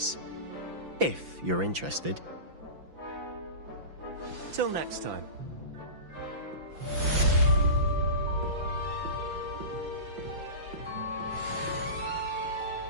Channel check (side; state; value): left; late; 5.9 ms